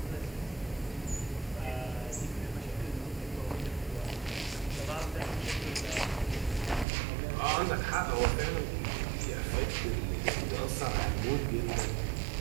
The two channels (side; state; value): left; drops out; at 6.9 s